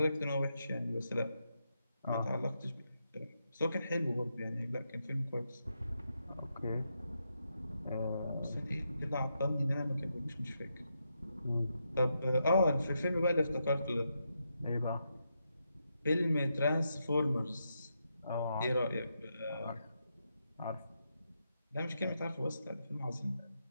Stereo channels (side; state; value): both; inverted; correlation -0.83